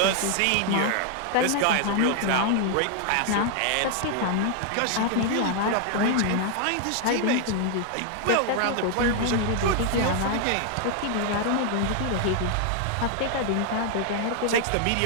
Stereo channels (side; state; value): both; different; correlation 0.00